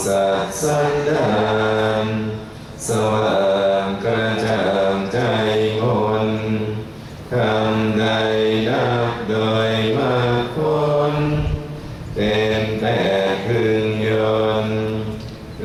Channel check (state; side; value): identical; both; correlation 1.00